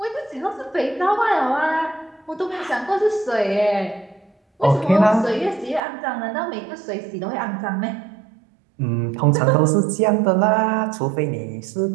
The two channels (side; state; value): left; drops out; at 5.8 s